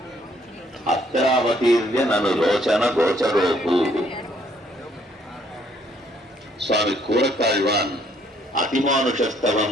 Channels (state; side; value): normal; both; correlation 0.66